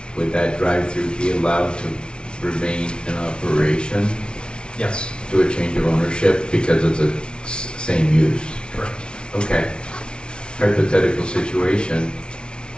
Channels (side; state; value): right; late; 0.056 ms